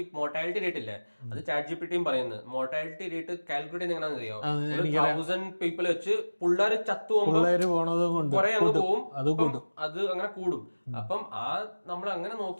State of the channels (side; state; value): both; inverted; correlation -1.00